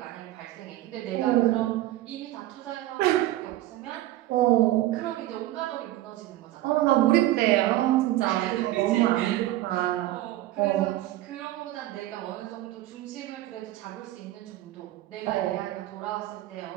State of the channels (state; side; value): quieter; left; 15.5 dB